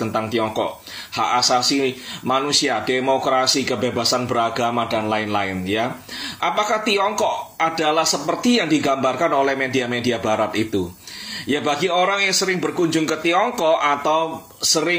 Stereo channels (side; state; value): both; identical; correlation 1.00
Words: tentang Tiongkok, hak asasi manusia, demokrasi, kebebasan beragama dan lain-lain, ya. Apakah Tiongkok adalah seperti yang digambarkan oleh media-media Barat itu? Ya, bagi orang yang sering berkunjung ke Tiongkok atau